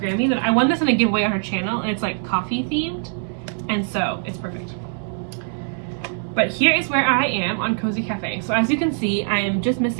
that I won this in a giveaway on her channel, and it's like coffee themed, and so it's perfect. But here is where I am on Cozy Cafe. So as you can see, I am just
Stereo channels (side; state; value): left; silent; digital silence